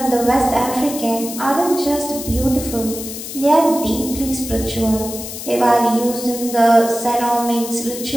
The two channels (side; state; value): left; noise; hiss, 9 dB below the sound